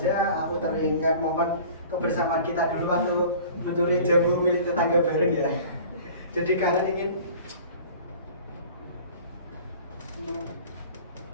aku teringat momen kebersamaan kita dulu waktu mencuri jamu milik tetangga bareng ya. Jadi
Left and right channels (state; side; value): inverted; both; correlation -0.44